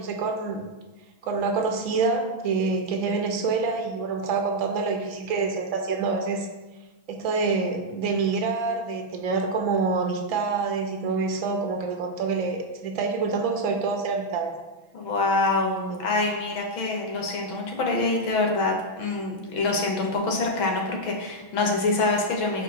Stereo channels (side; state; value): right; late; 6.1 ms